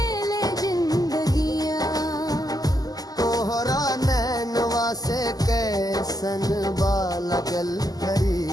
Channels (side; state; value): right; late; 0.18 ms